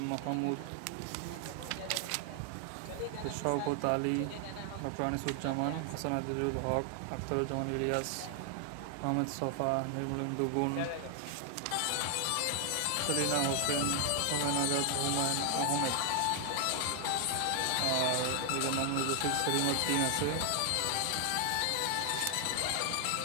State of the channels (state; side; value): different; both; correlation 0.00